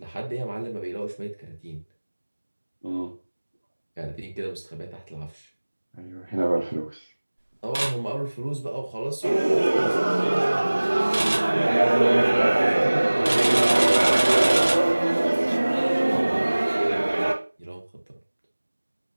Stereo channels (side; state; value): both; inverted; correlation -1.00